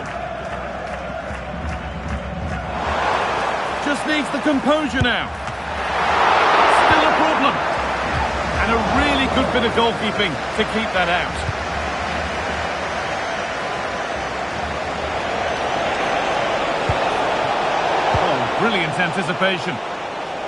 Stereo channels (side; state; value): both; identical; correlation 1.00